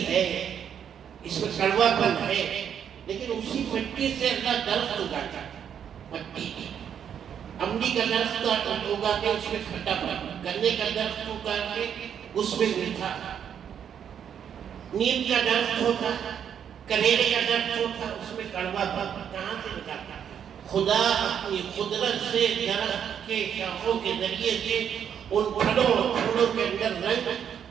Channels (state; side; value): quieter; left; 8.5 dB